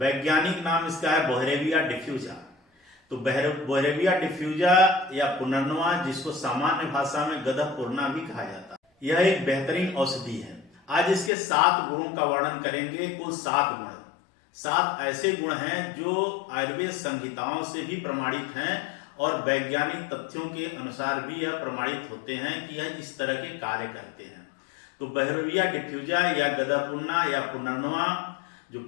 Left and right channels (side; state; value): right; drops out; at 11.3 s